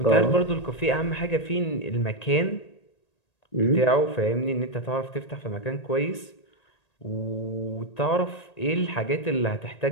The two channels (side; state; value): right; late; 1.8 ms